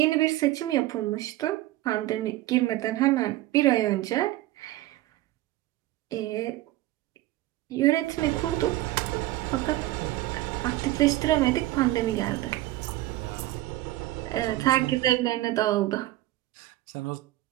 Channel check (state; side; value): quieter; left; 16.5 dB